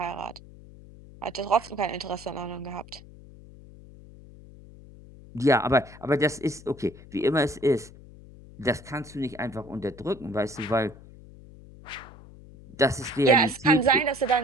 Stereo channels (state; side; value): noise; left; hum, 19 dB below the sound